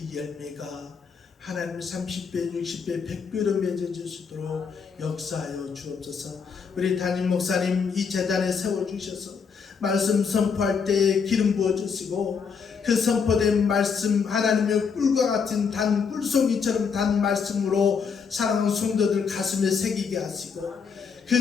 열매가 하나님 30배, 60배, 100배로 맺어질 수 있도록 역사하여 주옵소서. 우리 담임 목사님 이 재단에 세워주셔서 말씀 선포할 때에 기름 부어주시고 그 선포된 말씀 하나님의 꿀과 같은 단 꿀송이처럼 단 말씀으로 사랑하는 성도들 가슴에 새기게 하시고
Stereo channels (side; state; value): right; quieter; 6.0 dB